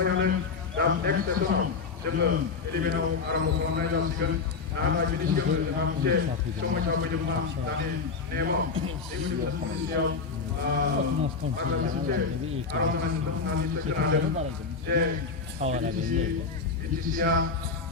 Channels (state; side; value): quieter; right; 4.8 dB